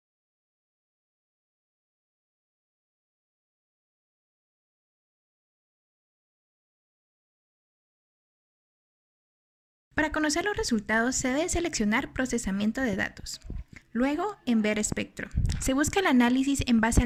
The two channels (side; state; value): both; identical; correlation 1.00